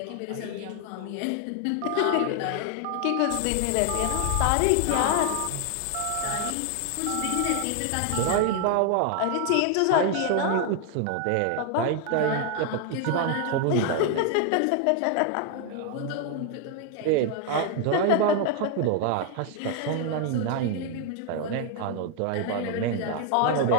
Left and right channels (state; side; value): different; both; correlation 0.00